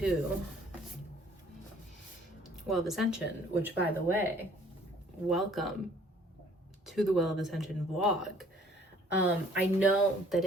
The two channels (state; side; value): normal; both; correlation 0.57